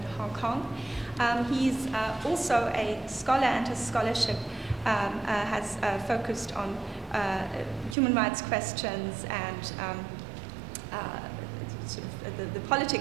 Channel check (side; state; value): left; drops out; at 8.0 s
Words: Hong Kong. He's also a scholar, and his scholarship has focused on human rights questions and sort of the